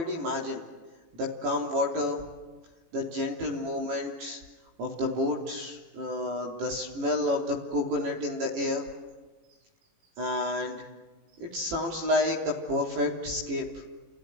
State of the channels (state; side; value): late; left; 18 ms